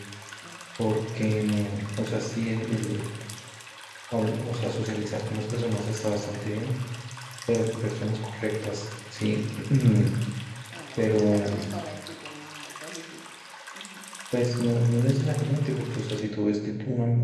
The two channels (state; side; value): identical; both; correlation 1.00